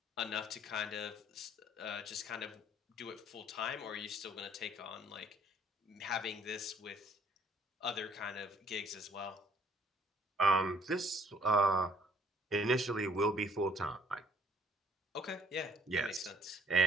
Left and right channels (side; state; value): both; normal; correlation 0.59